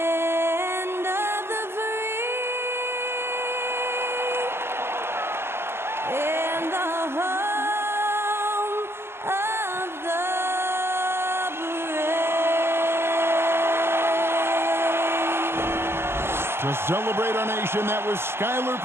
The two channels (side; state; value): left; late; 0.12 ms